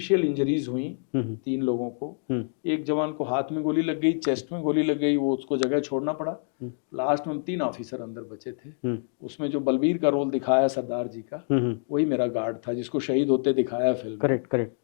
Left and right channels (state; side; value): silent; right; digital silence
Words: इंजरीज हुई 3 लोगों को। एक जवान को हाथ में गोली लग गई, चेस्ट में गोली लग गई, वो उसको जगह छोड़ना पड़ा। लास्ट में हम 3 ऑफिसर अंदर बचे थे। उसमें जो बलबीर का रोल दिखाया सरदार जी का, वही मेरा गार्ड था जिसको शहीद होते दिखाया फिल्म में। करेक्ट।